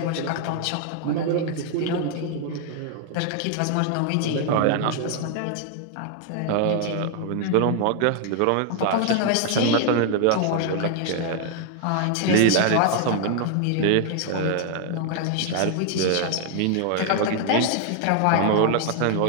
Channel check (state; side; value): different; both; correlation 0.00